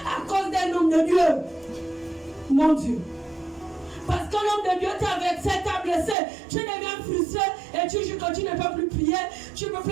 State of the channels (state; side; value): drops out; left; at 6.2 s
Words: à cause d'un homme de Dieu? Mon Dieu. Parce que l'homme de Dieu t'a vexé, t'a blessé, tu deviens frustré et tu dis que tu ne peux plus prier, tu ne peux